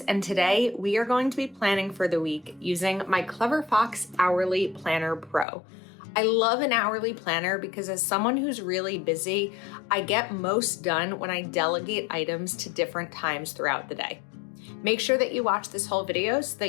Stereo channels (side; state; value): right; drops out; at 5.5 s